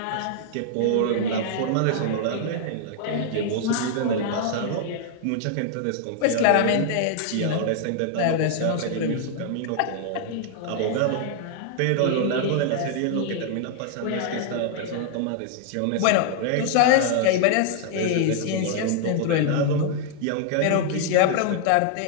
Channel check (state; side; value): different; both; correlation -0.01